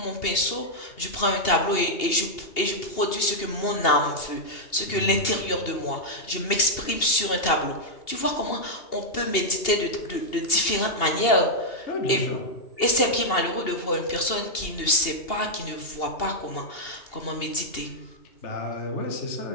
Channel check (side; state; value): right; late; 2.8 ms